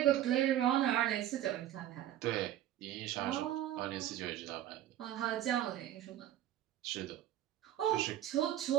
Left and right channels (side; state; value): left; quieter; 12.4 dB